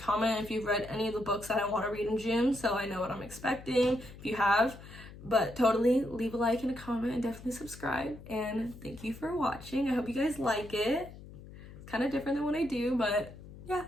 if you've read any of the books that I want to read in June, so I know what I'm expecting if you have. But totally leave a like and a comment and definitely subscribe. And thank you for watching. I hope you guys like it. It's kind of different than what I do, but yeah,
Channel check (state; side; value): noise; left; hum, 16 dB below the sound